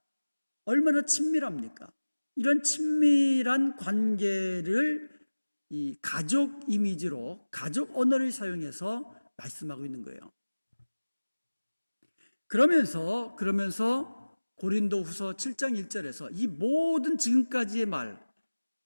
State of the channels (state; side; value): inverted; both; correlation -1.00